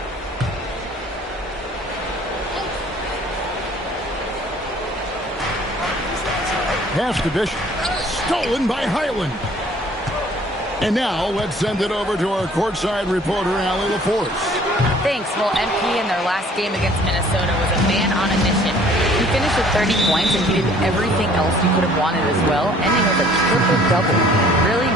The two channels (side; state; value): both; normal; correlation 0.55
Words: Pass to Bishop. Stolen by Highland. And now let's send it over to our courtside reporter, Allie LaForce. Thanks. Well, MP in their last game against Minnesota was a man on a mission. He finished with 30 points, and he did everything else you could have wanted as well, ending with a triple-double. Really